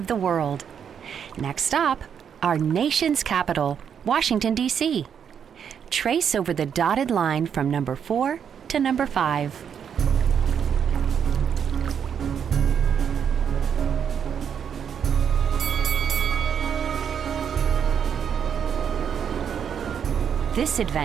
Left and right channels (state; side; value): quieter; left; 7.9 dB